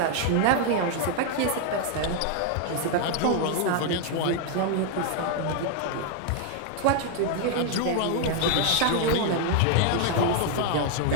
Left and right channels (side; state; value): both; different; correlation 0.00